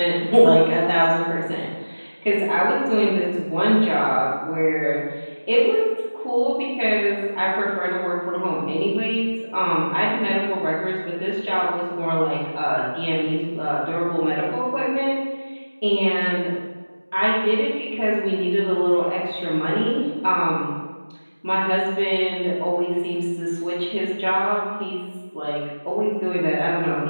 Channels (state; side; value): inverted; both; correlation -1.00